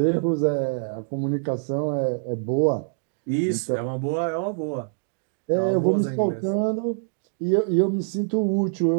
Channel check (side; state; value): left; silent; digital silence